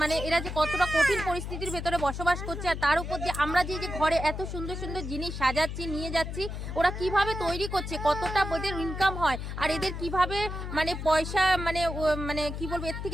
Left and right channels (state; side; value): noise; left; hum, 6 dB below the sound